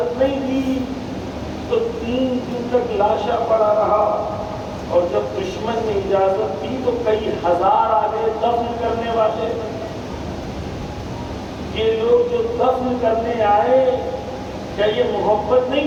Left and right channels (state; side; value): identical; both; correlation 1.00